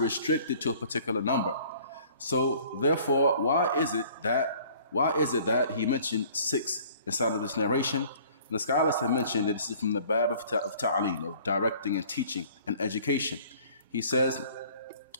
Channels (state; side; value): inverted; both; correlation -0.53